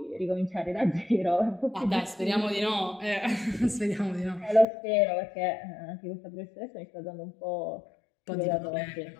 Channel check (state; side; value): drops out; right; at 4.7 s